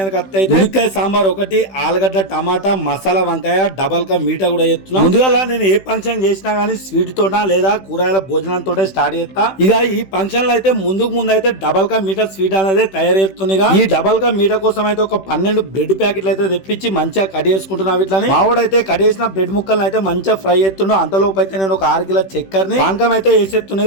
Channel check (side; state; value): right; late; 16 ms